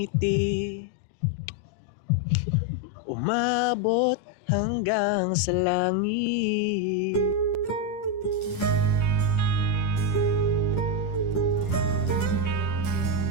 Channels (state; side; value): late; right; 10 ms